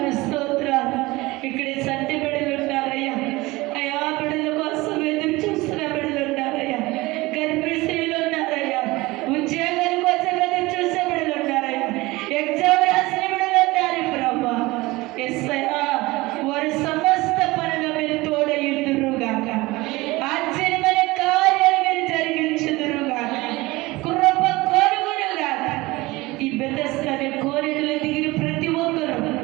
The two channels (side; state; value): left; quieter; 21.0 dB